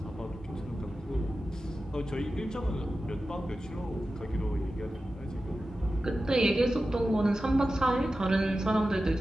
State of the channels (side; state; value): both; normal; correlation 0.93